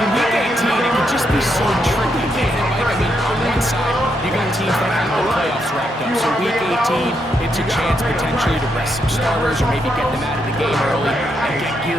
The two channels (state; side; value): normal; both; correlation 0.79